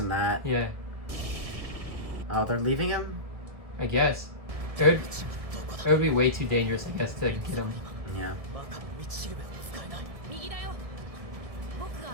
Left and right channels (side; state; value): left; late; 1.7 ms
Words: that. Yeah. Oh, they're leaving him? I guess. It would be way too dangerous, I guess, to get him. Yeah.